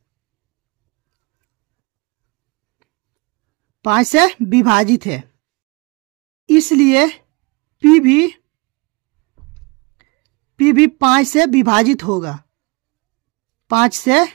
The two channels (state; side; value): quieter; left; 27.7 dB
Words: 5 से विभाजित है, इसलिए P भी 5 से विभाजित होगा। 5 से